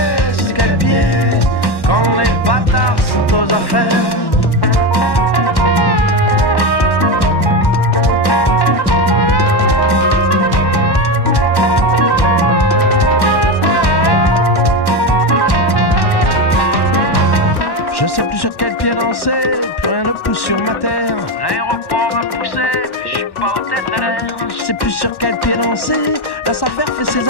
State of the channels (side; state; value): right; late; 1.1 ms